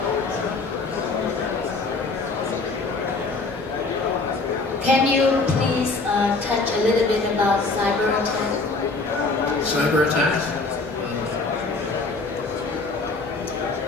Can you please touch a little bit about cyber attack? Cyber attacks?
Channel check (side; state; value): right; quieter; 3.7 dB